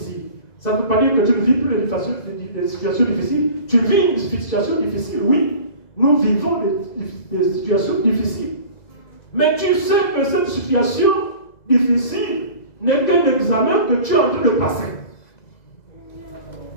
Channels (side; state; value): right; late; 2.0 ms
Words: Ça ne veut pas dire que tu ne vis plus des situations difficiles. Tu vis une situation difficile, oui. Nous vivons des situations difficiles. Mais tu sais que cette situation difficile n'est qu'un examen que tu es en train de passer.